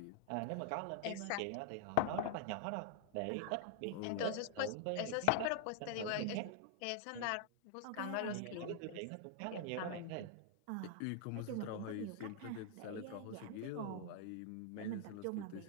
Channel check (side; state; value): both; different; correlation 0.00